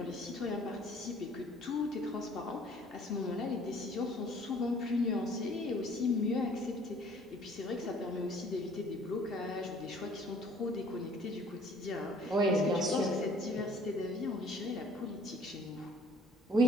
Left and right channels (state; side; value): normal; both; correlation 0.56